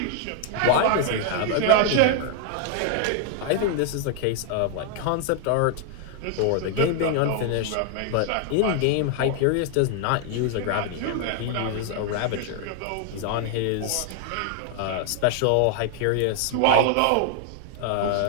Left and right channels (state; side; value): different; both; correlation 0.00